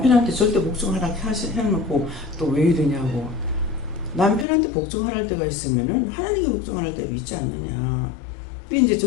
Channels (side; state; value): right; drops out; at 4.5 s